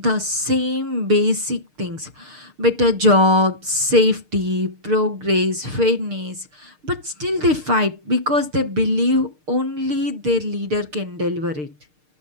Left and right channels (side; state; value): left; late; 6.6 ms